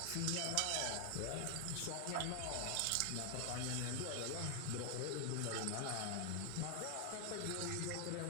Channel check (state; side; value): different; both; correlation 0.00